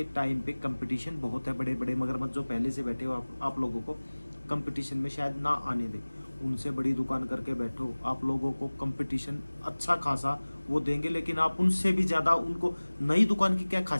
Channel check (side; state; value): both; inverted; correlation -1.00